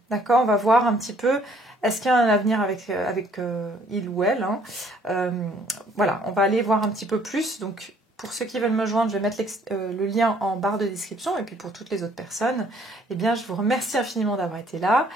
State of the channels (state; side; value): normal; both; correlation 0.61